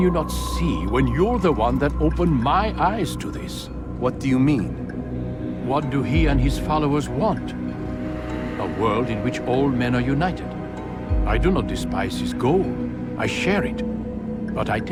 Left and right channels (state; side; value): identical; both; correlation 1.00